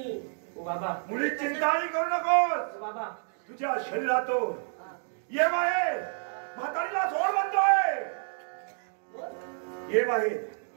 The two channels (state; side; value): silent; left; digital silence